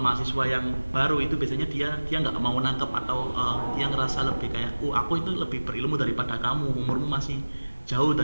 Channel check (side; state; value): both; inverted; correlation -1.00